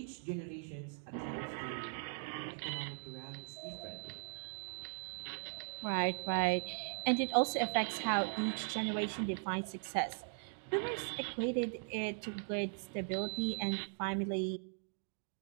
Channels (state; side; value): silent; left; 52 dB below the other